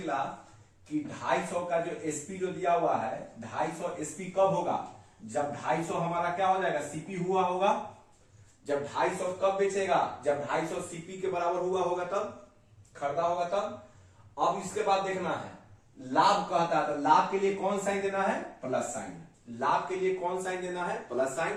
कि 250 का जो एसपी जो दिया हुआ है, 250 एसपी कब होगा, जब 250 हमारा क्या हो जाएगा, सीपी हुआ होगा। जब 250 कब बेचेगा, जब 250 सीपी के बराबर हुआ होगा तब, खरीदा होगा तब। अब इसके बाद देखना है लाभ कहता है, तो लाभ के लिए कौन साइन देना है, प्लस साइन। लाभ के लिए कौन साइन देना है, प्लस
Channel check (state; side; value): identical; both; correlation 1.00